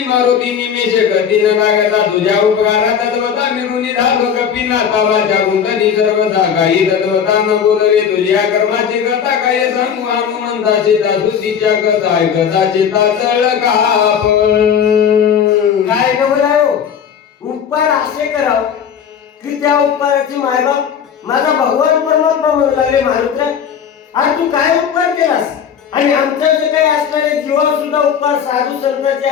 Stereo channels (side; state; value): right; quieter; 7.9 dB